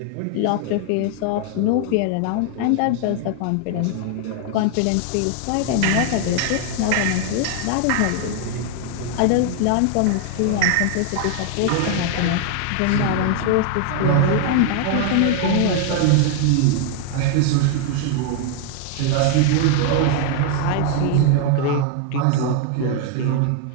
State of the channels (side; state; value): both; different; correlation 0.00